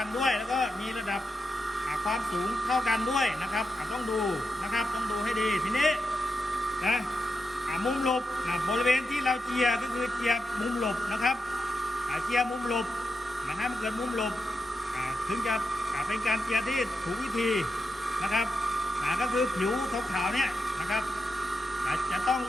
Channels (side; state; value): both; normal; correlation 0.86